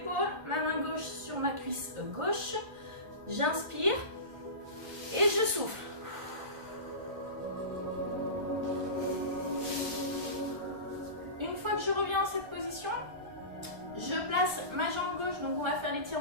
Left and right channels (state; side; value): late; left; 1.5 ms